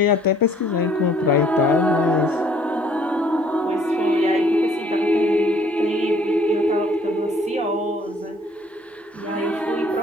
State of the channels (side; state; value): both; normal; correlation 0.60